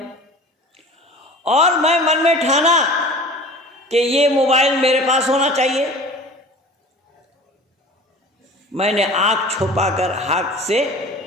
और मैं मन में ठाना कि ये मोबाइल मेरे पास होना चाहिए। मैंने आँख छुपाकर हाथ से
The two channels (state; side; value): normal; both; correlation 0.41